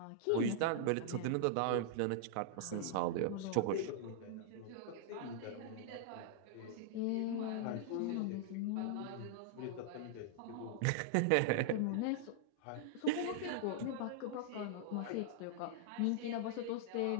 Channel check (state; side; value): different; both; correlation -0.01